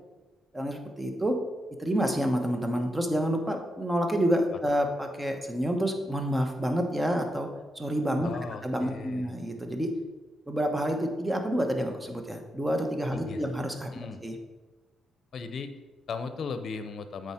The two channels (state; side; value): normal; both; correlation 0.85